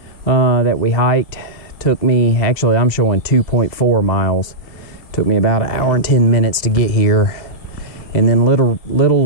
that we hiked. Took me, actually I'm showing 2.4 miles. Took me about 1 hour and 10 minutes to get here. And then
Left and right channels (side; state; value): right; late; 2.1 ms